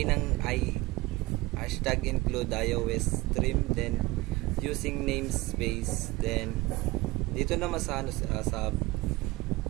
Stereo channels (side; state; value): left; quieter; 20.4 dB